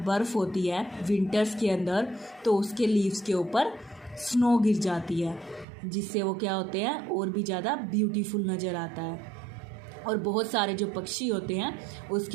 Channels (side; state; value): left; drops out; at 5.7 s